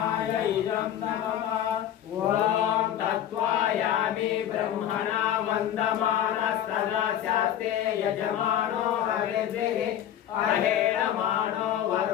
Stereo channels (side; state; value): right; quieter; 10.8 dB